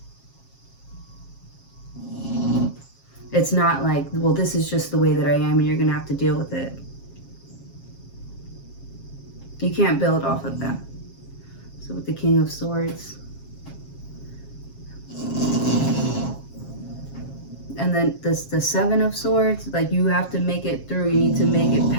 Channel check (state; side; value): late; right; 7.4 ms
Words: It's not like, well, this is just the way that I am and you're gonna have to deal with it. You can't build off of that. So with the King of Swords, and then this, the Seven of Swords, like, you have to make it through. You need to make it